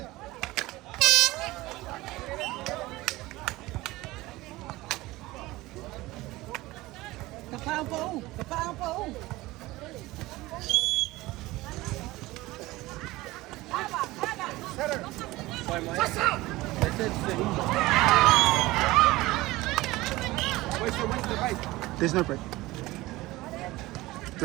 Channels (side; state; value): left; quieter; 19.2 dB